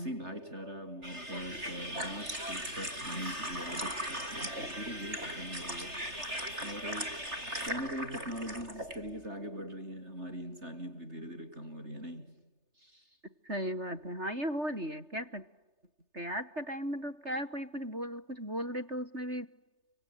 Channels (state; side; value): late; left; 3.3 ms